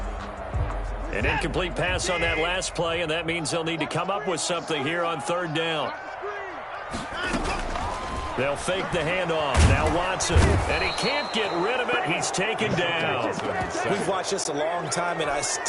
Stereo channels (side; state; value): both; identical; correlation 1.00